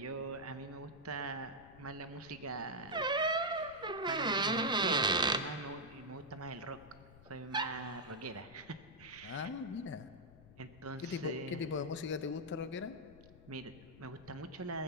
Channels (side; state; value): left; noise; rumble, 20 dB below the sound